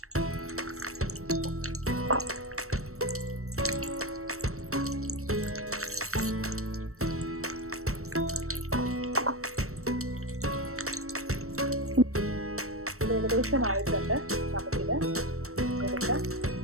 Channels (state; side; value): late; left; 0.63 ms